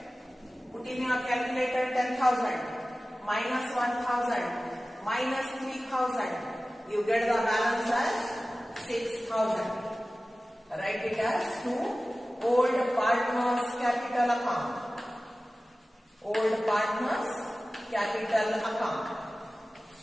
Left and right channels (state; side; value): normal; both; correlation 0.96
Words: Put in your calculator 10,000 minus 1,000 minus 3,000. You get the balance as 6,000. Write it as to old partners capital account. Old partners capital account.